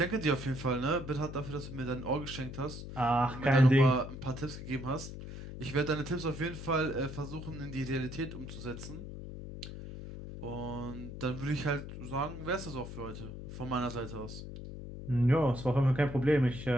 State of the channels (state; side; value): noise; left; hum, 10 dB below the sound